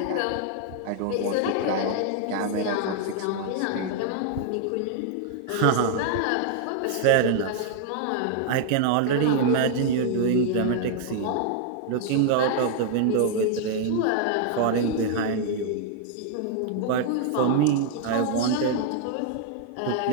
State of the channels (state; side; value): different; both; correlation 0.00